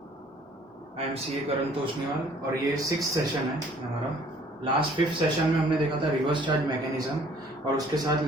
I am C A Karan Toshniwal और ये 6th session है हमारा। लास्ट 5th सेशन में हमने देखा था रिवर्स चार्ज मैकेनिज्म और उसके साथ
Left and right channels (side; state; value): both; normal; correlation 0.57